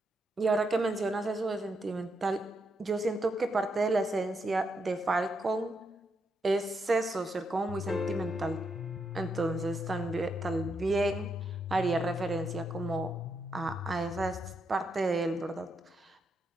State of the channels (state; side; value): normal; both; correlation 0.80